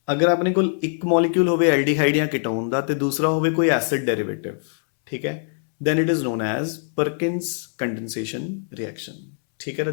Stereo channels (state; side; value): silent; right; 64 dB below the other